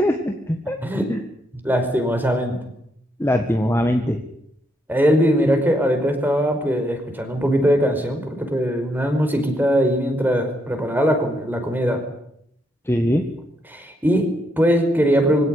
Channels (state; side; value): normal; both; correlation 0.77